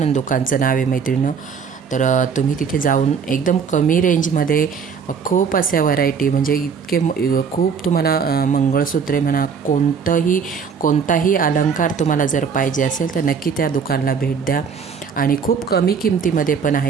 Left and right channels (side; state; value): left; quieter; 6.3 dB